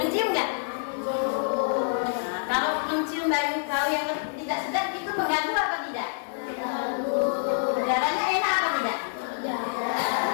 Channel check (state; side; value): silent; right; 60 dB below the other